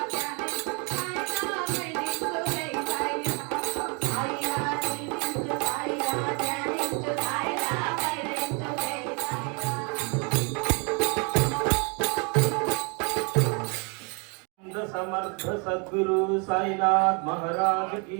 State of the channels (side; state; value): left; quieter; 33.7 dB